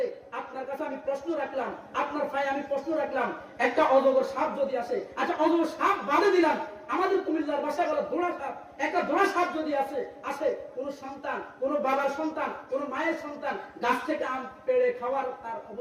আপনার কাছে আমি প্রশ্ন রাখলাম, আপনার ভাই আমি প্রশ্ন রাখলাম, একটা অজগর সাপ যদি আসে, আচ্ছা অজগর সাপ বাদে দিলাম, আমাদের কুমিল্লার ভাষায় বলে দোড়া সাপ, একটা দোড়া সাপ যদি আসে, কোন সন্তান, কোন বাবার সন্তান, কোন মায়ের সন্তান গাছ থেকে আম পেড়ে খাওয়ার তার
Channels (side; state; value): both; identical; correlation 1.00